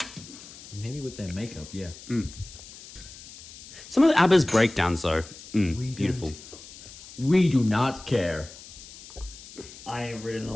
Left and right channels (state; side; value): noise; left; hiss, 17 dB below the sound